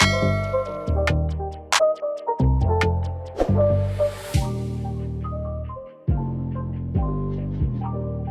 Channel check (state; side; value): identical; both; correlation 1.00